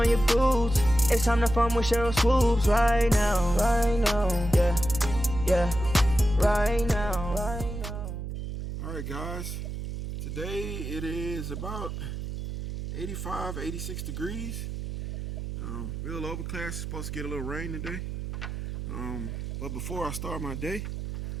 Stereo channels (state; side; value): noise; right; hum, 6 dB below the sound